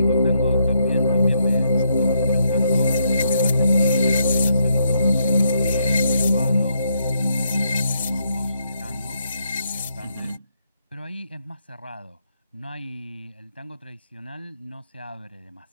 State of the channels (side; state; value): both; inverted; correlation -0.77